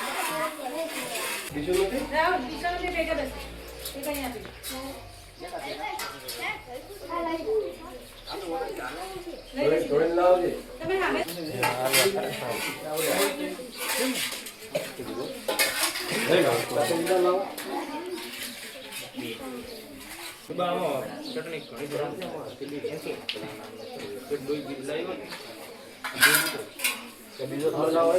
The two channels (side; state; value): both; identical; correlation 1.00